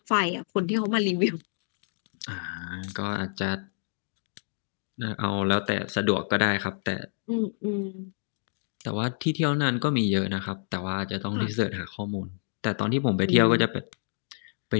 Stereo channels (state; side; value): silent; right; digital silence